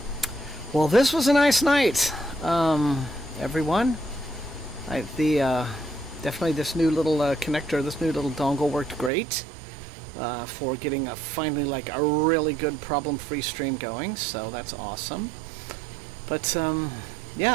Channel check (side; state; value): left; drops out; at 9.1 s